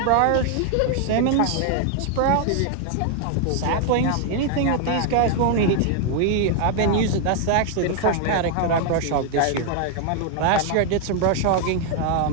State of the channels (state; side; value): different; both; correlation 0.00